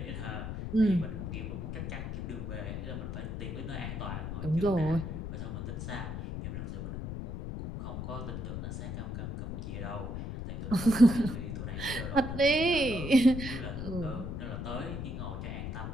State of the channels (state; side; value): noise; left; rumble, 5 dB below the sound